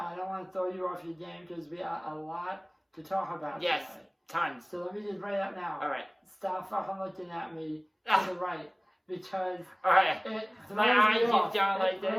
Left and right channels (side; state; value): both; identical; correlation 1.00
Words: don't want to throw you off your game, because we got a lot to talk about yes, today. tons. So let me just bring it up now. Alright, Stop fucking looking at me to the right, because alright. it throws My eye me keeps off. going like It this?